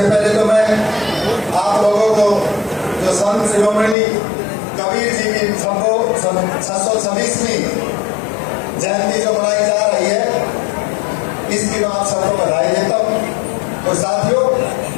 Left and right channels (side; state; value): right; drops out; at 4.0 s